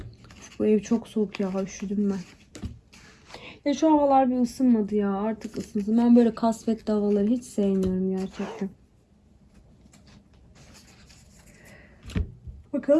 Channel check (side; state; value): both; identical; correlation 1.00